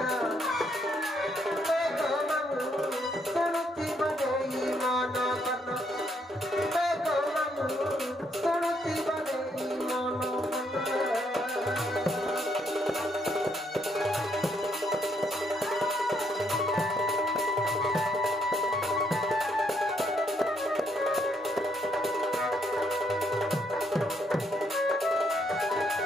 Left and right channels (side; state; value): both; normal; correlation 0.73